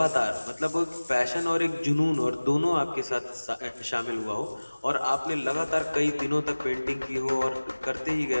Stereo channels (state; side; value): inverted; both; correlation -1.00